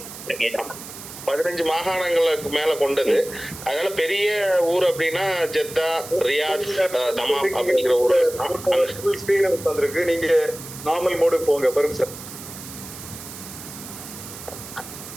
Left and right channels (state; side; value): noise; right; hiss, 13 dB below the sound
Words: 15 மாகாணங்களுக்கு மேல கொண்டது. அதனால பெரிய ஊர் அப்படின்னா ஜெத்தா, ரியாத், தமாம் அப்படிங்கிற ஊர். நீங்க நார்மல் மோடு போங்க பருக் சார்.